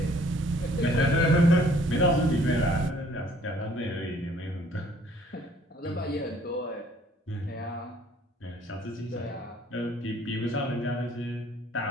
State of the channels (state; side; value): normal; both; correlation 0.59